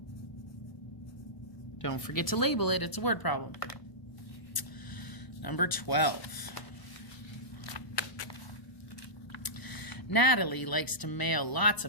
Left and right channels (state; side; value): late; right; 1.0 ms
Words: Don't forget to label it. It's a word problem. Number 12. Natalie likes to mail lots